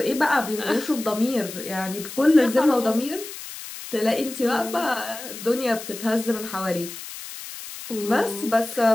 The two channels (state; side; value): noise; left; hiss, 11 dB below the sound